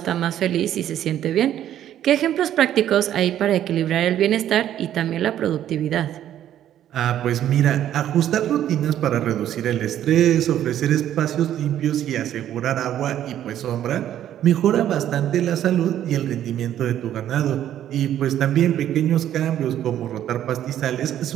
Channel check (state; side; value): quieter; left; 11.3 dB